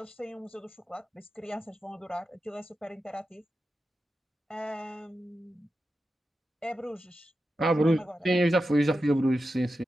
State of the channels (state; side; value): normal; both; correlation 0.91